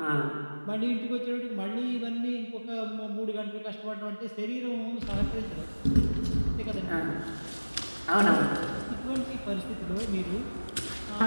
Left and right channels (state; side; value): inverted; both; correlation -1.00